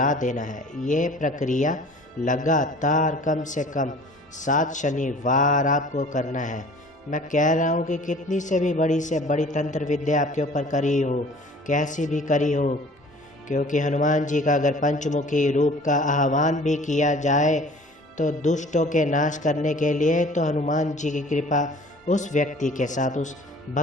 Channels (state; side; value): normal; both; correlation 0.48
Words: देना है। ये प्रक्रिया लगातार कम से कम 7 शनिवार आपको करना है। मैं कह रहा हूँ कि कितनी से बड़ी तंत्र विद्या आपके ऊपर करी हो, कैसी भी करी हो, क्योंकि हनुमान जी का अगर पंचमुखी रूप का आह्वान भी किया जाए तो दुष्टों के नाश करने के लिए तो हनुमान जी की कृपा उस व्यक्ति के साथ, उस